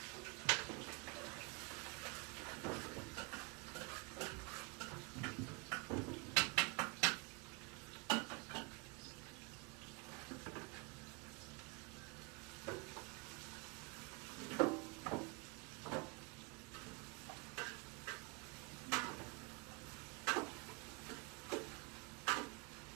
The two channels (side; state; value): left; quieter; 29.3 dB